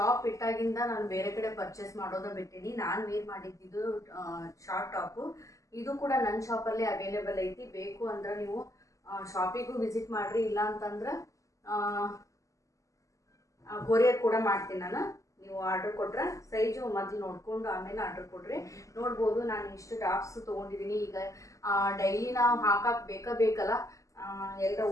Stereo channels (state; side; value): late; right; 0.16 ms